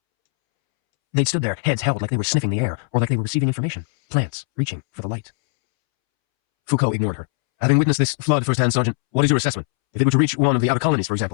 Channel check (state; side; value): silent; right; 66 dB below the other